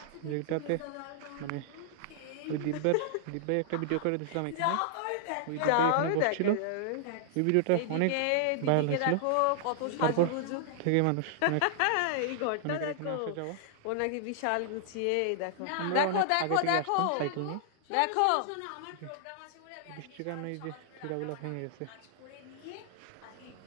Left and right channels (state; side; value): different; both; correlation -0.01